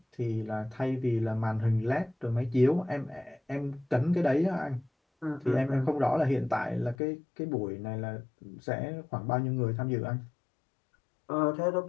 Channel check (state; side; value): drops out; right; at 7.0 s